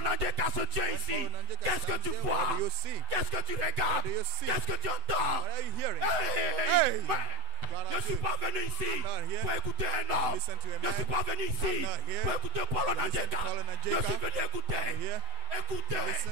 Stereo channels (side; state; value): left; late; 7.9 ms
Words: a dit qu'à ce Dieu ici, qu'est-ce que tu vois? Qu'est-ce que tu regardes? Qu'est-ce que tu entends? Hey, je ne suis pas venu ici pour écouter un homme. Je ne suis pas venu ici pour écouter Paul Onanjeka. Je suis venu écouter